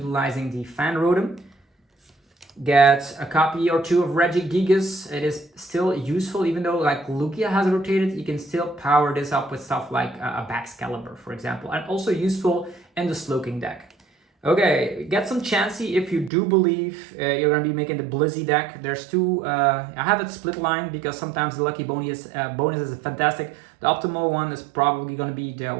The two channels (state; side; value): drops out; left; at 16.3 s